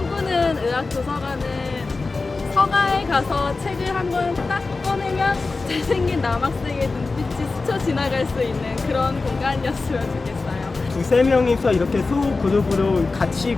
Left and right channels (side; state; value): right; quieter; 3.8 dB